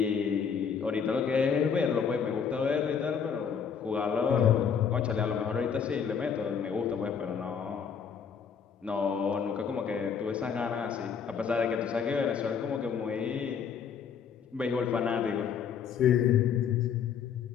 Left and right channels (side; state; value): right; quieter; 7.0 dB